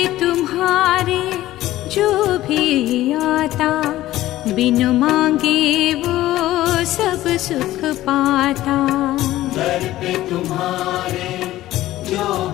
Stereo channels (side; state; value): right; quieter; 15.2 dB